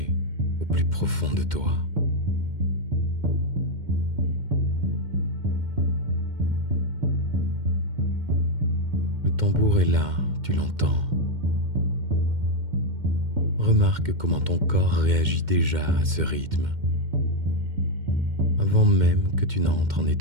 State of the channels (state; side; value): late; left; 2.1 ms